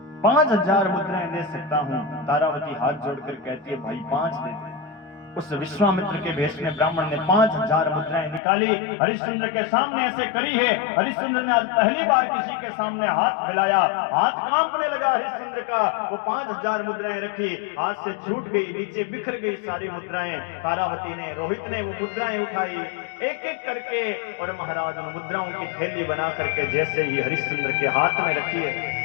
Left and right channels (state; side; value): drops out; right; at 8.4 s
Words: 5000 मुद्राएं दे सकता हूं। तारावती हाथ जोड़कर कहती है, भाई 5 दे दे। उस विश्वामित्र के भेष में ब्राह्मण ने 5000 मुद्राएं निकाली, हरिश्चंद्र के सामने ऐसे करी है। हरिश्चंद्र ने आज पहली बार किसी के सामने हाथ फैलाया, हाथ कांपने लगा हरिश्चंद्र का। वो 5000 मुद्राएं रखी, हाथ से छूट गई, नीचे बिखर गई सारी मुद्राएं। तारावती ने, रोहित ने वो मुद्राएं उठाई एक एक करके, और महाराज उन मुद्राओं की थैली बना करके जैसे ही हरिश्चंद्र के हाथ में रखी है,